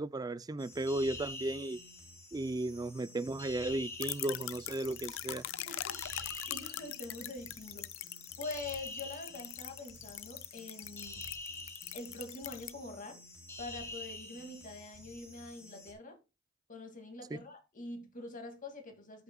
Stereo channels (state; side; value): normal; both; correlation 0.46